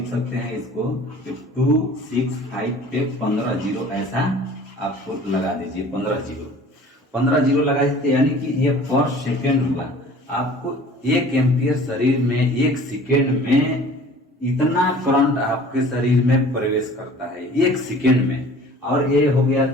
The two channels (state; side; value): normal; both; correlation 0.47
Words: सकते हैं इसको 265 पे 15 जीरो ऐसा आपको लगा दीजिए। 15 जीरो लगा दीजिए, यानी कि ये पर सेकेंड हुआ। आपको 1 एम्पियर शरीर में 1 सेकेंड में इतना करंट आपके शरीर में प्रवेश करता है 1 सेकेंड में। और ये हो गया